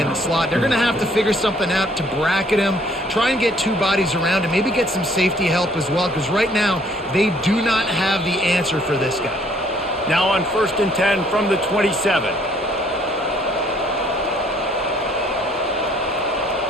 the slot. They're going to have to figure something out to bracket him, try and get two bodies around him, maybe get some safety help as well, because right now they do not have the answer for this guy. Now on 1st and 10 from the 27.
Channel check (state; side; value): normal; both; correlation 0.62